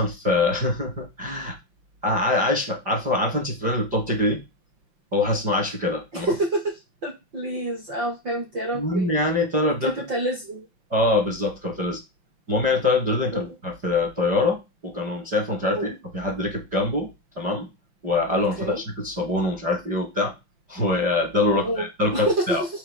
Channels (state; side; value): late; left; 5.8 ms